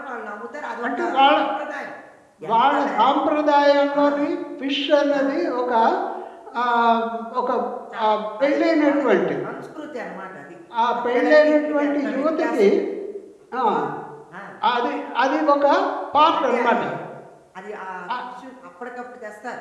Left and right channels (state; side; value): identical; both; correlation 1.00